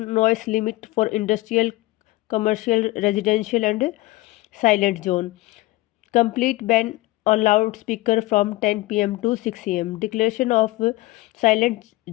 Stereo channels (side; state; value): right; quieter; 19.2 dB